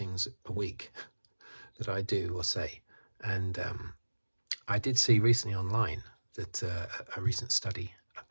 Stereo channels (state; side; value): inverted; both; correlation -1.00